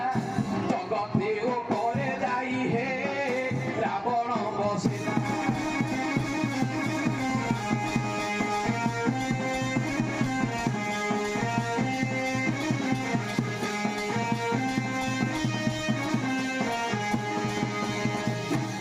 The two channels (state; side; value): identical; both; correlation 1.00